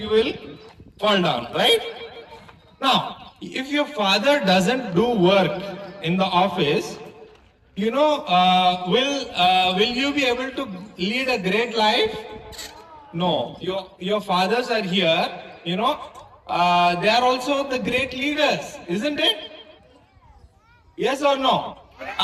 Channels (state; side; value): identical; both; correlation 1.00